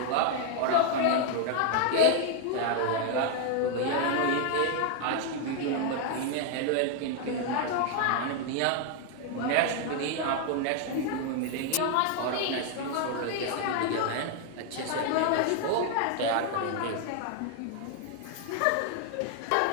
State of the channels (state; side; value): different; both; correlation 0.00